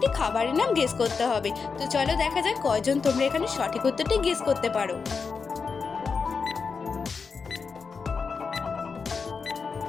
খাবারের নাম গেস করতে হবে। তো চলো দেখা যাক কয়জন তোমরা এখানে সঠিক উত্তরটি গেস করতে পারো।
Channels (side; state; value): right; quieter; 5.2 dB